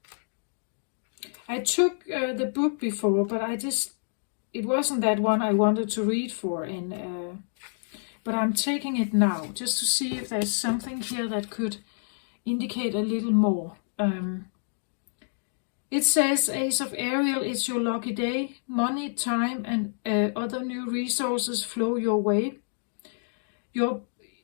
I took the book before, but it wasn't that one I wanted to read for, but I'm taking it now just to see if there's something here that could indicate a little more. It says, Ace of Ariel, it's your lucky day. Money, time, and other new resources flow your way. Your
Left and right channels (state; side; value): silent; right; digital silence